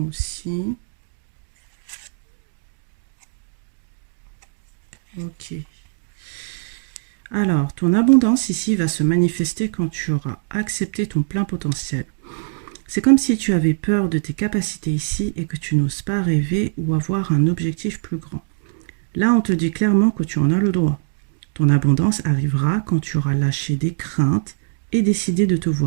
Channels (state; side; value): silent; left; digital silence